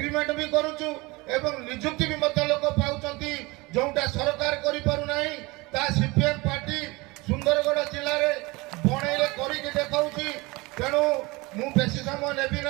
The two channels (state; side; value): quieter; left; 23.9 dB